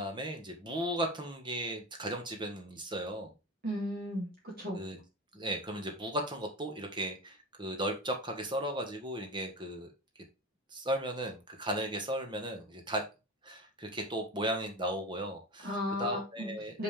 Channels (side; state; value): both; normal; correlation 0.27